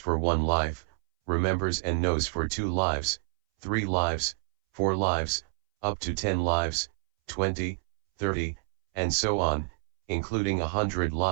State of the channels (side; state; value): left; silent; 59 dB below the other